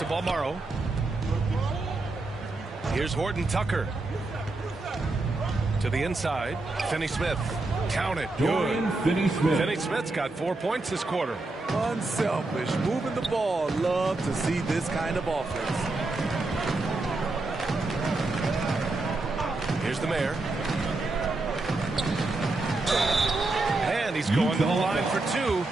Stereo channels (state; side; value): quieter; left; 3.1 dB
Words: Balmaro. Here's Horton Tucker. To the inside. Finney-Smith. Count it. Good. Finney-Smith. Finney-Smith's got 4 points this quarter. Unselfish. Moving the ball. Love to see this kind of offense. Here's the Mayor. And he's going to the line for 2.